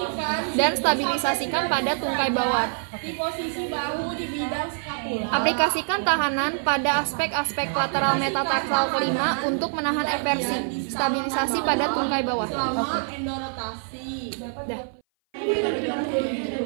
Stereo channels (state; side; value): silent; left; 58 dB below the other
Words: Dan stabilisasikan pada tungkai bawah. di posisi bahu di bidang skapula. Aplikasikan tahanan pada aspek-aspek lateral metatarsal kelima untuk menahan eversi. Stabilisasi pada tungkai bawah. Endorotasi.